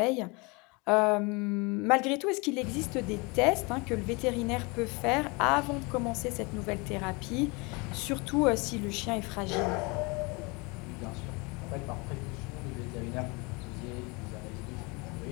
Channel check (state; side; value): quieter; right; 27.9 dB